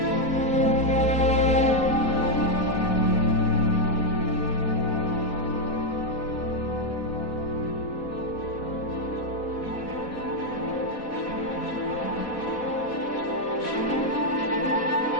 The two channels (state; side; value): late; right; 4.1 ms